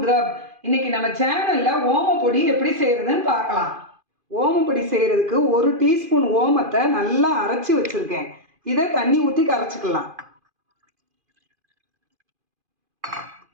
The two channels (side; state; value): left; late; 2.5 ms